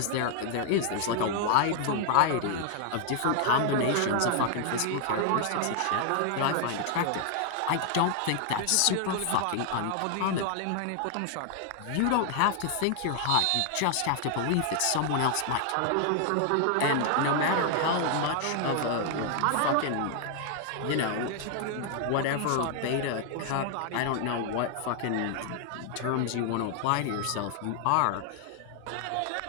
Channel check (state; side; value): different; both; correlation 0.00